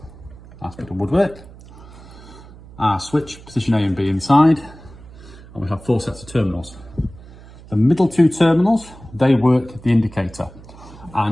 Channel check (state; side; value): noise; right; hum, 19 dB below the sound